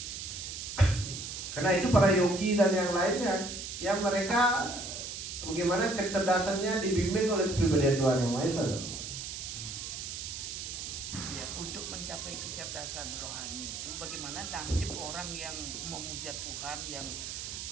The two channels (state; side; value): noise; right; hiss, 7 dB below the sound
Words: Karena itu para yogi dan yang lainnya yang mereka bagaimana kecerdasannya dibimbing oleh kepribadian Tuhan yang Maha Esa. Ya, untuk mencapai kecerdasan rohani itu bagaimana nasib orang yang memuja Tuhan yang